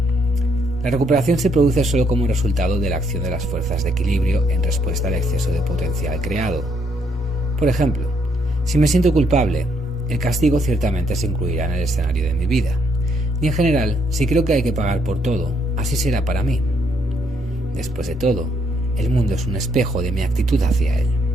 La recuperación se produce solo como resultado de la acción de las fuerzas de equilibrio en respuesta al exceso de potencial creado. Por ejemplo, si me siento culpable, el castigo ciertamente se incluirá en el escenario de mi vida. Y en general, si creo que hay que pagar por todo, así será para mí. Después de todo, el mundo es un espejo de mi actitud hacia él.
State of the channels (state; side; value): normal; both; correlation 0.71